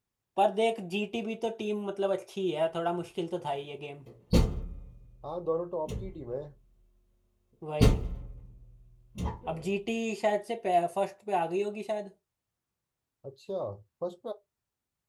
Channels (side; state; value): both; identical; correlation 1.00